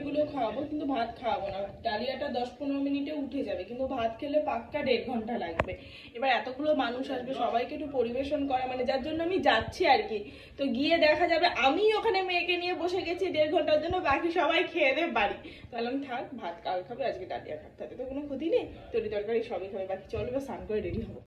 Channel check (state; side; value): identical; both; correlation 1.00